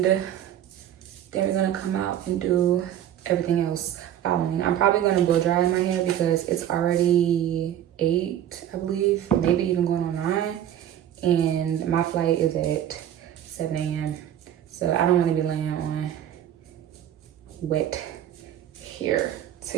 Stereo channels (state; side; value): quieter; left; 11.0 dB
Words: then we're gonna come out and do everything else following. I'm probably gonna blow dry my hair because it's already 8, I believe, maybe even going on 9, and my flight is at 7 a.m. So I don't want to be laying on wet hair, to